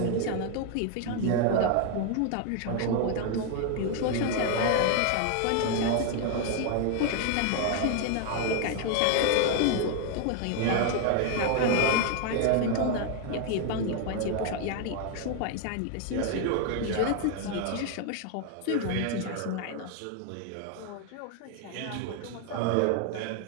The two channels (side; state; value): both; different; correlation 0.01